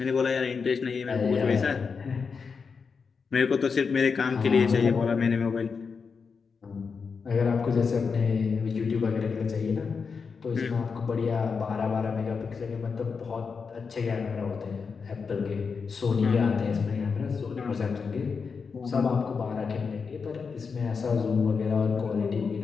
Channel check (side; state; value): right; quieter; 5.4 dB